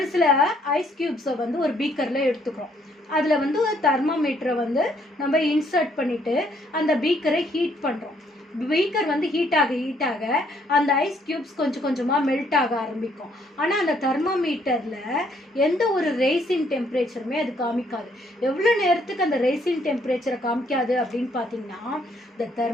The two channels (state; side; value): normal; both; correlation 0.68